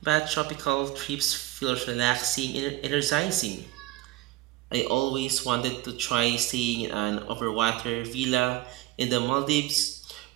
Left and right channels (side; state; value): left; quieter; 17.4 dB